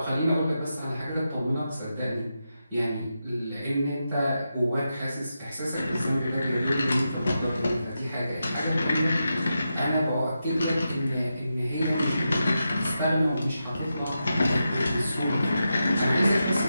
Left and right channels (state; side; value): inverted; both; correlation -0.88